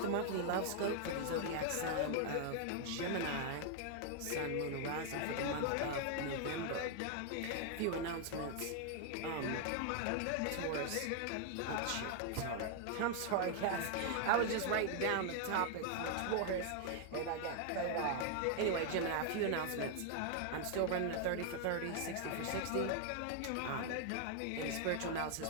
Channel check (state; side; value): different; both; correlation 0.00